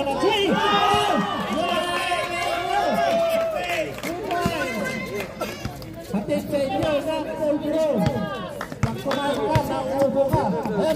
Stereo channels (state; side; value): identical; both; correlation 1.00